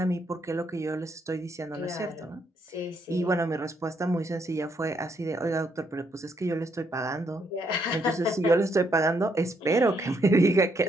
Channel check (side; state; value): both; normal; correlation 0.74